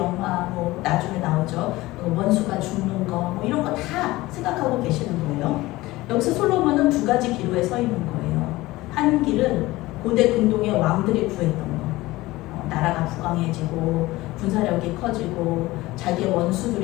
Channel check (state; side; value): quieter; right; 18.9 dB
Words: 뭐 나중에 나오죠, 원수가 죽는 거, 뭐 이런 거 다 생각하고 계시는 거예요. 여기서 솔로몬은 두 가지 기로에 서 있는 거예요. 한 길은 고대 근동의 왕들이 구했던 거, 나라가 부강해지고 군사력이 커지고 자기의